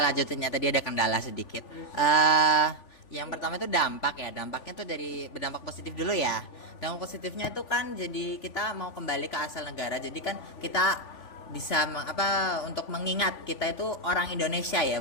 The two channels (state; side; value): late; right; 3.5 ms